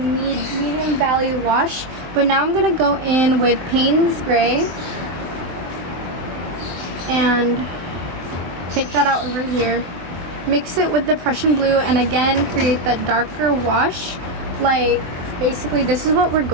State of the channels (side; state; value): left; late; 23 ms